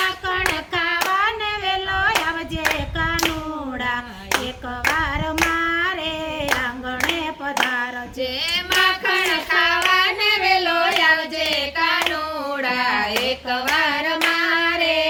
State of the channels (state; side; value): identical; both; correlation 1.00